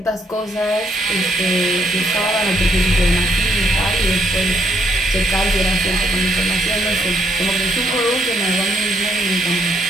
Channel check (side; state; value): both; normal; correlation 0.72